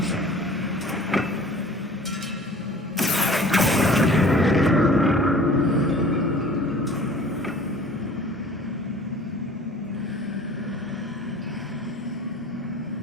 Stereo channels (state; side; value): normal; both; correlation 0.47